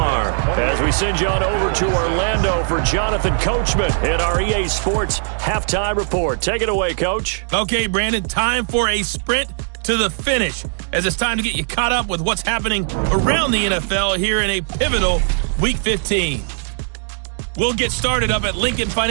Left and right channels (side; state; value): left; silent; digital silence